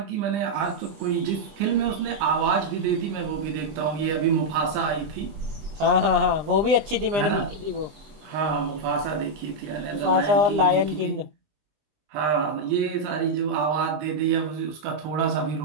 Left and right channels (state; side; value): late; left; 20 ms